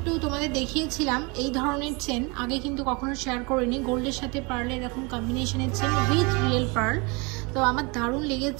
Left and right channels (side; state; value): left; quieter; 29.1 dB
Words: তোমাদের দেখিয়েছিলাম এই ধরনের চেন, আগে কিন্তু কখনো শেয়ার করিনি। গোল্ডের সাথে পার্লের এরকম কম্বিনেশনের চেন উইথ রিয়েল পার্ল, তো আমার দারুণ